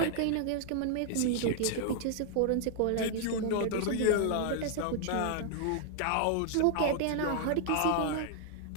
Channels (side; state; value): both; different; correlation 0.00